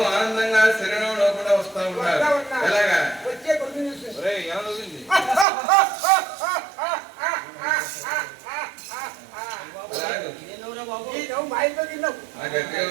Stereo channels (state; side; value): drops out; left; at 5.5 s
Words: ఆనందంగా శరీరంలో కూడా వస్తా ఉన్నారు. ఎలాగా గట్టిగా